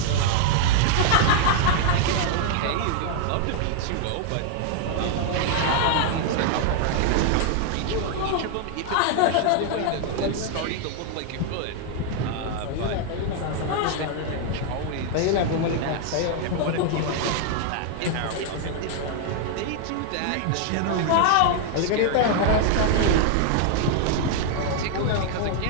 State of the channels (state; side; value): different; both; correlation 0.00